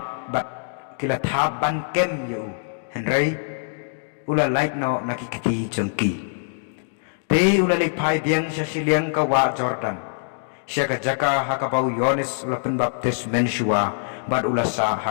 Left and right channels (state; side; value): silent; right; digital silence